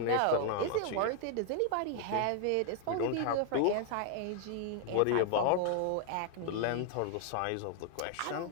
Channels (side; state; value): both; different; correlation 0.00